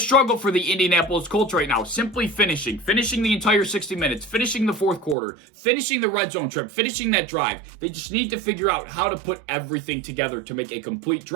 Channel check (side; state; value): left; drops out; at 5.2 s